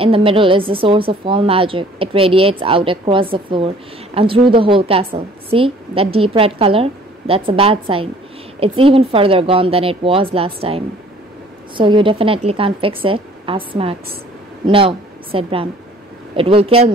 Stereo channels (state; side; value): normal; both; correlation 0.54